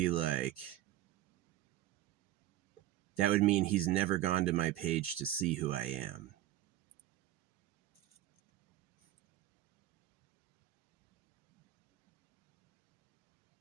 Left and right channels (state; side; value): quieter; left; 14.1 dB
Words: like, that would mean he's never gone to my page to see who I am.